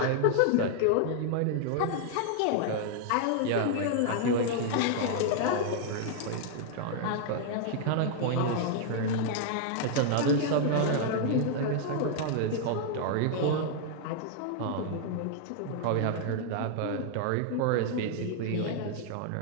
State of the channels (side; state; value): both; different; correlation -0.01